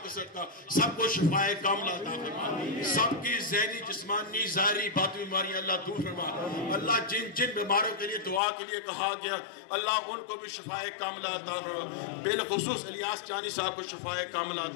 کا صدقہ سب کو شفائے کاملہ عطا فرما، سب کی ذہنی جسمانی ظاہری باطنی بیماریاں اللہ دور فرما۔ اللہ جن بیماروں کے لیے دعا کے لیے کہا گیا اللہ ان کو بھی شفائے کاملہ عطا فرما، بالخصوص الیاس جانی صاحب کو شفائے کاملہ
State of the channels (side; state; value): right; drops out; at 8.4 s